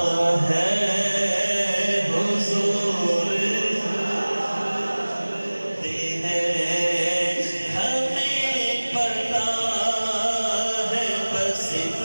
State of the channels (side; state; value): both; inverted; correlation -1.00